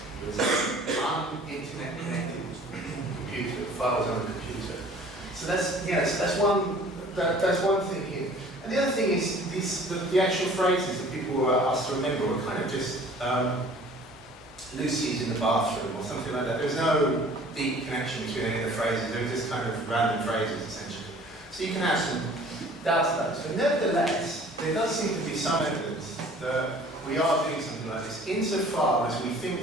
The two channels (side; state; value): both; normal; correlation 0.50